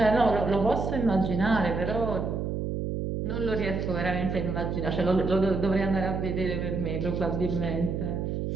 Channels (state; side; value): noise; right; hum, 2 dB below the sound